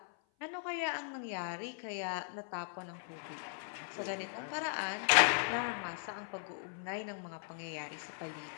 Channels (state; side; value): silent; right; 52 dB below the other